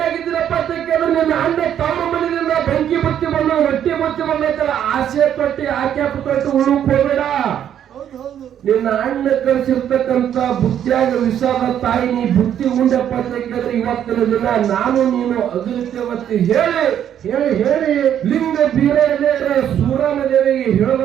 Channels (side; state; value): left; quieter; 9.9 dB